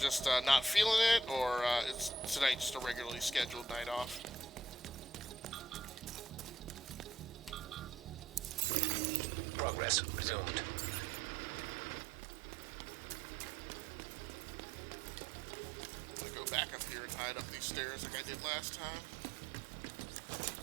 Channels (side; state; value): left; drops out; at 8.7 s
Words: not feeling it, or is tonight just a regularly scheduled night off? Progress resumed. I'm gonna go back up here and hide up these stairs like I did last time.